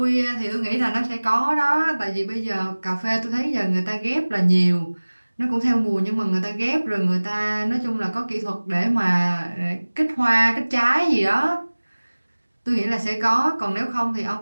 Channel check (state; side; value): inverted; both; correlation -1.00